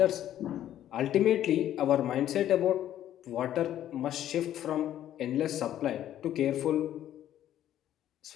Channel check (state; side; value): quieter; right; 11.7 dB